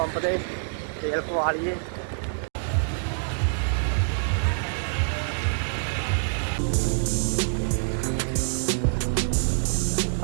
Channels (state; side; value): silent; left; digital silence